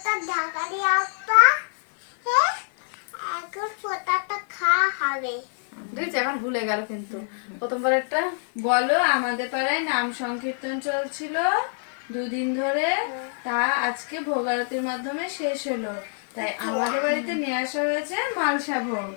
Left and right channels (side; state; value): right; silent; 58 dB below the other